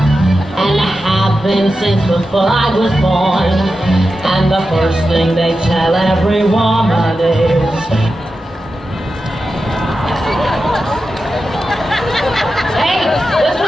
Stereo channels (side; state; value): both; normal; correlation 0.91